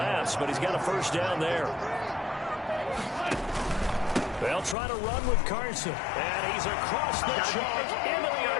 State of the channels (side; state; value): right; drops out; at 4.8 s